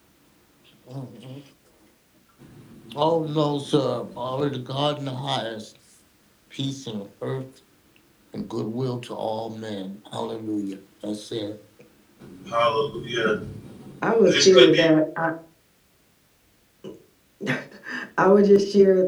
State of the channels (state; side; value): identical; both; correlation 1.00